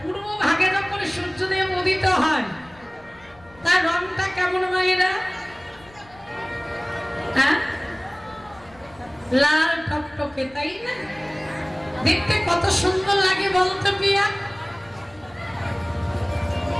পূর্ব ভাগে যখন সূর্যদেব উদিত হয়, তার রংটা কেমন মায়েরা? হ্যাঁ, লাল টকটকে, তাই না? দেখতে কত সুন্দর লাগে বলতো পিয়া।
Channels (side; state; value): left; noise; rumble, 26 dB below the sound